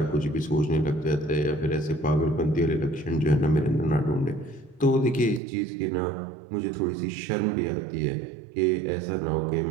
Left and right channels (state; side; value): drops out; left; at 5.4 s